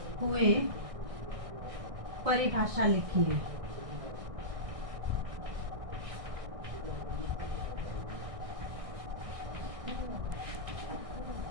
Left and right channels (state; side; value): late; left; 1.6 ms